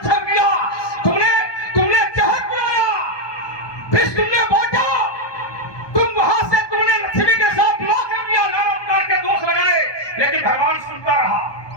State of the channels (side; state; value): right; late; 1.2 ms